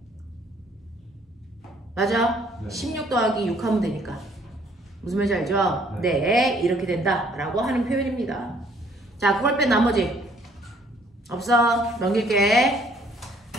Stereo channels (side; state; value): both; normal; correlation 0.62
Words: 맞아? 네. 16 더하기 6 하면 되니까. 무슨 말인지 알죠? 네, 이렇게 된다 라고 하는 표현입니다. 자, 그걸 뺀 나머지 없어. 넘길게.